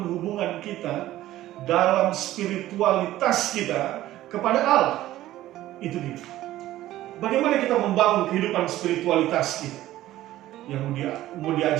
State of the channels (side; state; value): left; quieter; 14.8 dB